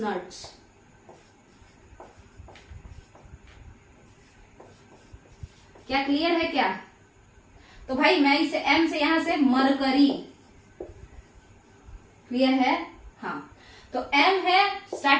क्या क्लियर है क्या? तो भाई मैं इसे एम से यहां से मरकरी, क्लियर है? हाँ, तो एम है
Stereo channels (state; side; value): identical; both; correlation 1.00